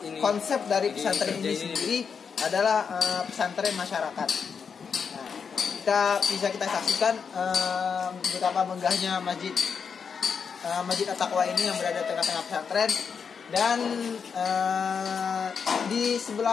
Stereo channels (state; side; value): quieter; right; 6.2 dB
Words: konsep dari pesantren ini sendiri adalah pesantren masyarakat. Nah, kita saksikan betapa megahnya Masjid At-Taqwa ini yang berada di tengah-tengah pesantren, dan